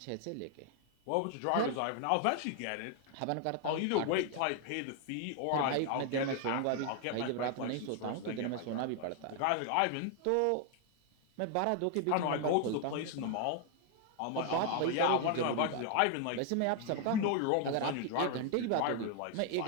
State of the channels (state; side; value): different; both; correlation 0.00